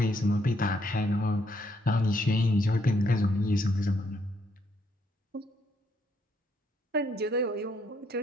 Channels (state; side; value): normal; both; correlation 0.72